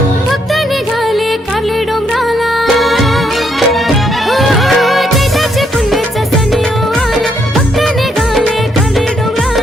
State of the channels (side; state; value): both; normal; correlation 0.73